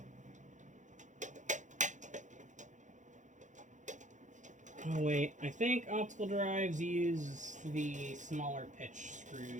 Oh wait, I think optical drives use the smaller pitch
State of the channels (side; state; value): left; late; 0.36 ms